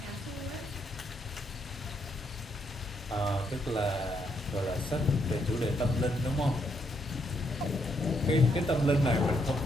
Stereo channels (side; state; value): both; normal; correlation 0.76